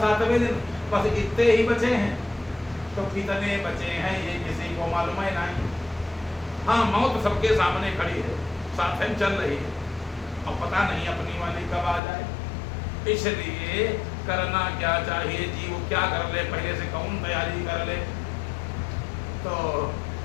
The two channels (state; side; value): drops out; right; at 12.0 s